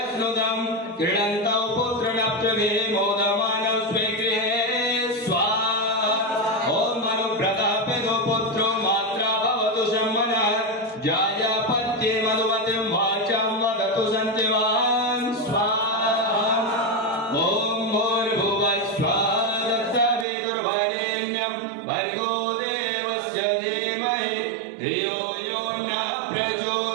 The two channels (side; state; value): left; drops out; at 20.2 s